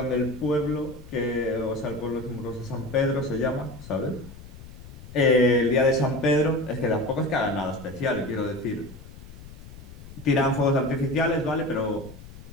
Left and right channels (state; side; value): noise; left; rumble, 16 dB below the sound